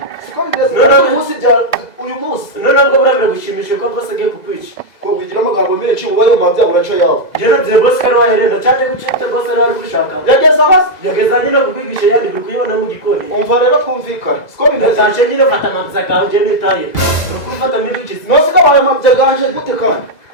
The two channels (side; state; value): right; late; 2.0 ms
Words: siko bimeze uyu munsi ntabwo burabira gushimisha ko boss agiye kukwica ko wigira amagambo menshi uba ayo mabya uraca yawe jeno bye boss kari waherenda cyaje gucita boss ari gushaka yageza nyine kukwigisha yandi bikuyibona mu gikoni umva rero twumvikana siko bimeze taje nyine fata amabya gawe je nitaye nukumfata mibikisi nose ko abaye mabya ganje gute kandi